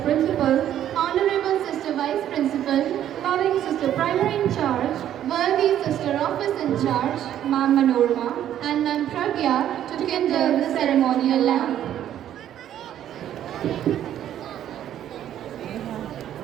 Honorable Sister Vice Principal, loving Sister Primary in Charge, worthy Sister Office in charge, Ma'am Manorma, and Ma'am Pragya to kindle the ceremonial lamp.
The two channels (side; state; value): left; quieter; 11.1 dB